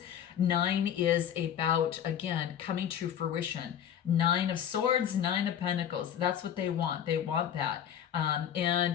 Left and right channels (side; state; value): right; quieter; 9.5 dB